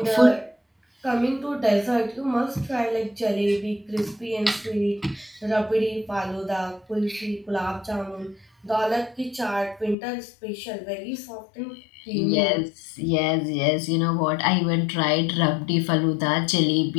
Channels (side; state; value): right; drops out; at 10.0 s